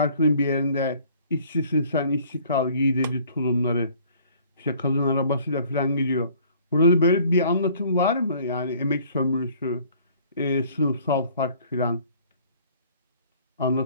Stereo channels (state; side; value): inverted; both; correlation -0.55